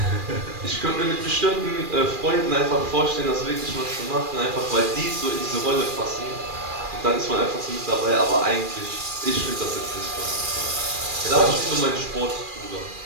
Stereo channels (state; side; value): late; left; 2.4 ms